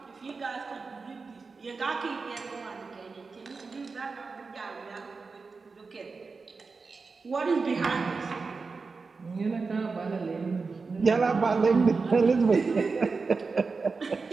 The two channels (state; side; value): quieter; left; 4.4 dB